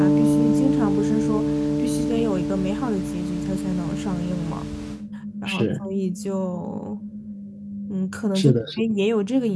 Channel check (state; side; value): identical; both; correlation 1.00